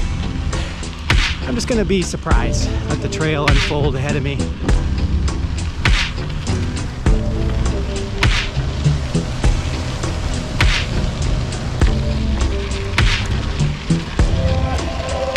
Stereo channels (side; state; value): both; identical; correlation 1.00